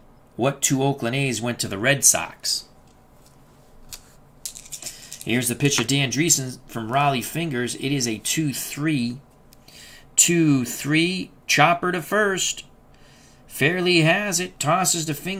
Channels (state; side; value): identical; both; correlation 1.00